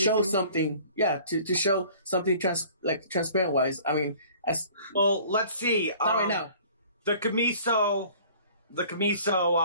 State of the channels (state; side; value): inverted; both; correlation -0.50